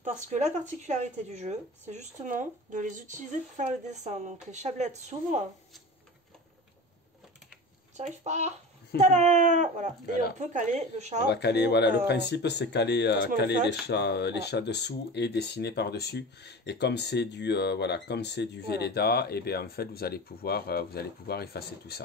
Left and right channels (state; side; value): normal; both; correlation 0.32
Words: Parce que la particularité du jeu, c'est justement de les utiliser pour faire le dessin. Donc les chablettes s'ouvrent. J'arrive pas. Tada. Voilà. Et on peut caler le chat. On va caler, voilà, le principe c'est caler les chats dessous et dessiner par-dessus. Et comme c'est du Velleda, et bien en fait vous allez pouvoir effacer tout